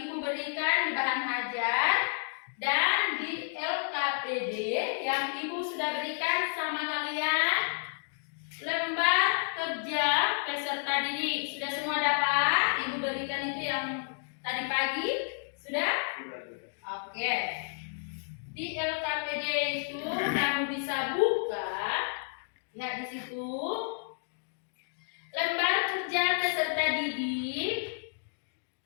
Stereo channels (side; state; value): right; silent; digital silence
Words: berikan di bahan ajar dan di LKPD yang ibu sudah berikan sama kalian. Lembar kerja peserta didik sudah semua dapat? Ibu berikan itu yang tadi pagi sudah? Oke. Di LKPD itu kamu bisa buka. Lihat di situ. Lembar kerja peserta didik,